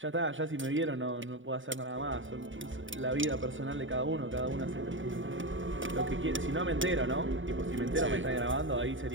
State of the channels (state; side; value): late; left; 0.56 ms